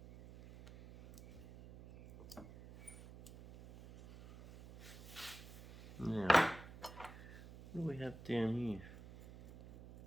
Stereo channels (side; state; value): right; noise; hum, 16 dB below the sound